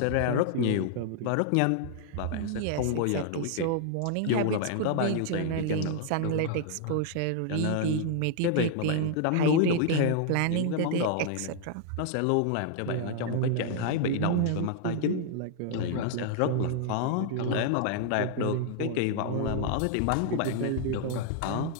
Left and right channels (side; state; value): both; different; correlation -0.01